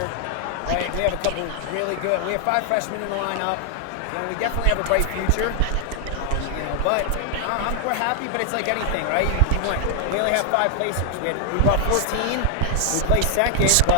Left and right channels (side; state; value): both; different; correlation 0.00